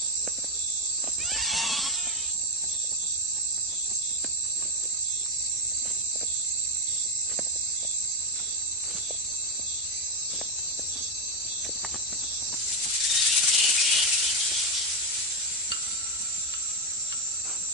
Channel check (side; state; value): both; normal; correlation 0.10